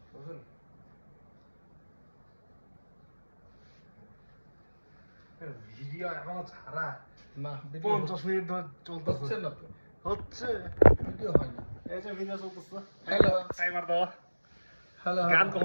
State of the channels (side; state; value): both; inverted; correlation -1.00